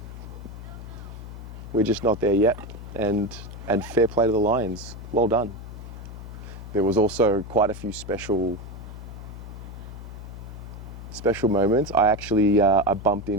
We're just not there yet. And fair play to the Lions. Well done. There was also quite a few special moments. I actually I bumped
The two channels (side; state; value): left; noise; hum, 11 dB below the sound